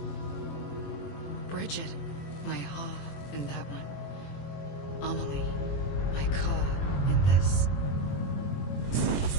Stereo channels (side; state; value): right; late; 21 ms